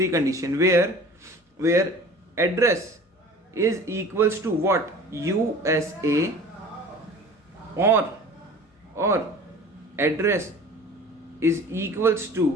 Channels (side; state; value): both; normal; correlation 0.42